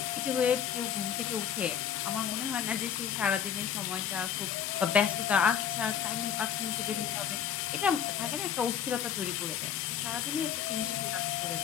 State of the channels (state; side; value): quieter; right; 8.7 dB